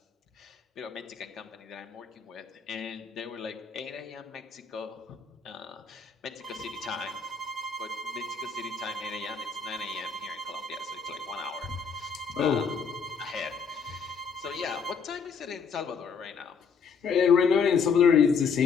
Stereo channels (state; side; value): quieter; right; 5.8 dB